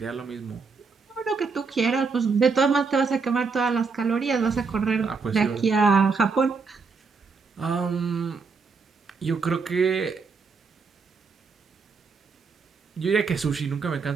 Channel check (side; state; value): left; quieter; 4.9 dB